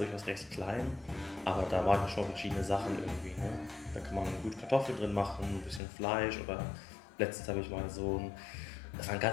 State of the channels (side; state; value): right; drops out; at 5.8 s